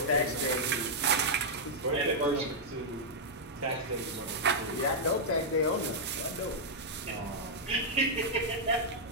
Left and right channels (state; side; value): normal; both; correlation -0.06